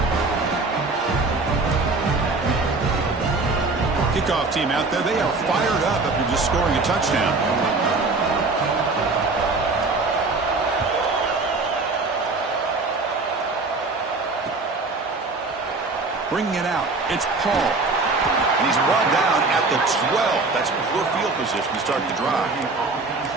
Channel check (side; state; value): left; quieter; 3.6 dB